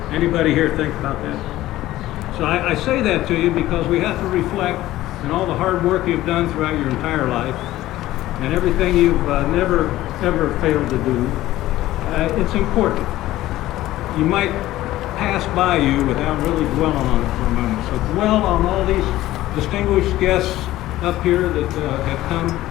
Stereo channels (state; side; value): quieter; right; 15.5 dB